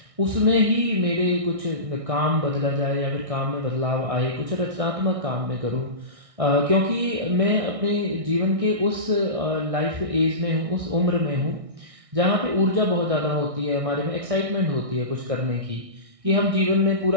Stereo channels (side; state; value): left; late; 1.6 ms